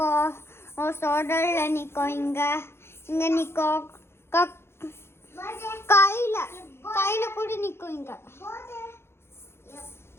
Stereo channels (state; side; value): late; right; 0.12 ms